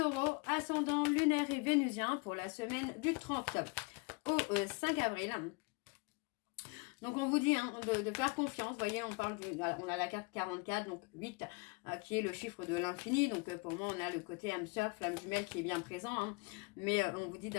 ascendant lunaire et vénusien, pour la semaine du 30 au 5 avril. Donc, on vous dit hein, de faire confiance. Vous voyez, on a la carte 44, donc 8, qui est le chiffre de l'infini. Donc, pour moi, on a le côté âme sœur, flamme jumelle qui est bien présent. Hein. Mais on vous dit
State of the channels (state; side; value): quieter; right; 29.8 dB